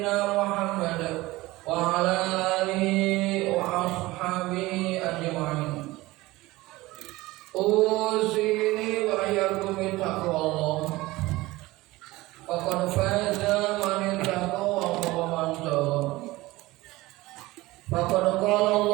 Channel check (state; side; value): quieter; left; 19.5 dB